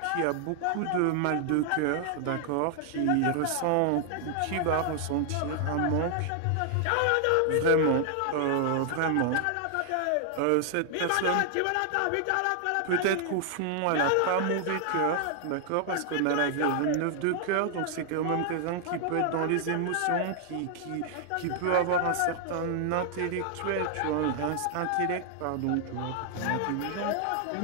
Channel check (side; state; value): both; different; correlation 0.00